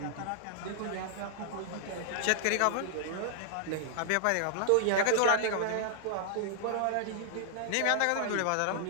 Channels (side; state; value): both; different; correlation -0.01